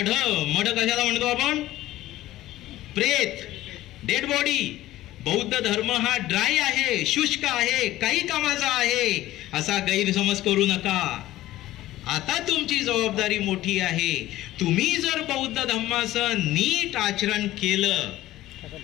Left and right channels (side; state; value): right; quieter; 15.5 dB